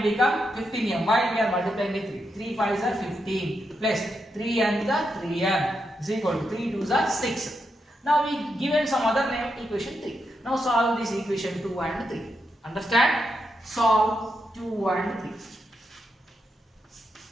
become 15m. Why we are multiplying with 3? 3 5s are 15 plus 3 and the 3m is equal to 3 2s are 6. Now we given some other name equation 3. Now solve this equation 2 and 3. Understand? Solve 2 and 3.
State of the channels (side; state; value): both; normal; correlation 0.84